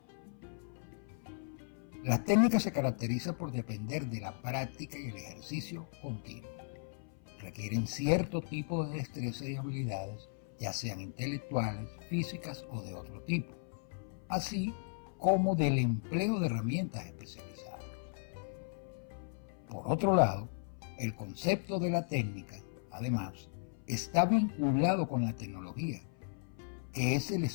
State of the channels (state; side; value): silent; right; 53 dB below the other